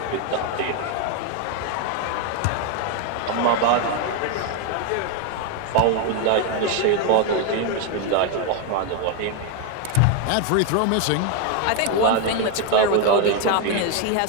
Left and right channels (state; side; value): different; both; correlation 0.01